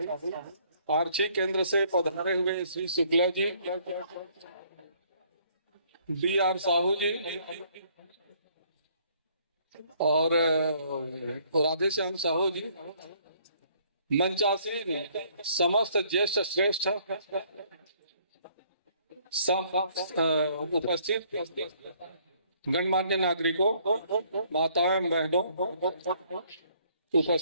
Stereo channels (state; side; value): inverted; both; correlation -0.63